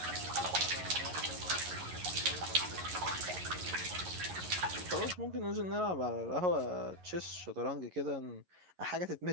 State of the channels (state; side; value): late; left; 11 ms